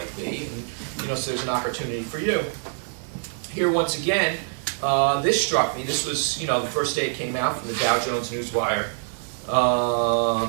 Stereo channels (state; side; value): silent; left; 55 dB below the other